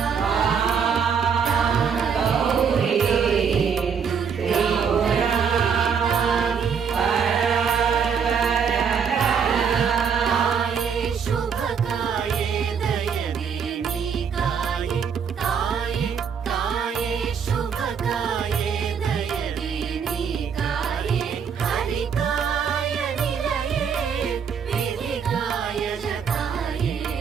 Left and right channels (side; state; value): left; quieter; 6.8 dB